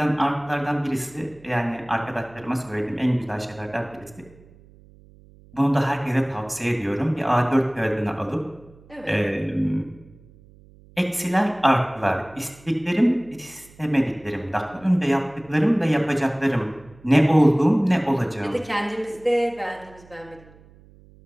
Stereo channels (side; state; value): right; noise; hum, 25 dB below the sound